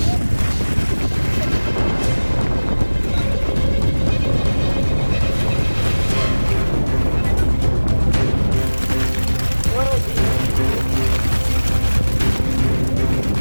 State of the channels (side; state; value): both; inverted; correlation -1.00